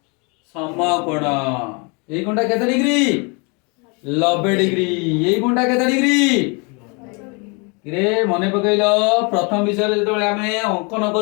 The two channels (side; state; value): right; quieter; 32.0 dB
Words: সমকোণ। এই কোণটা কেতে ডিগ্রি? 90 ডিগ্রি। এই কোণটা কেতে ডিগ্রি? রে মনে পকাইল প্রথম বিষয়ে যেতବେଳେ ଆମେ অঙ্কন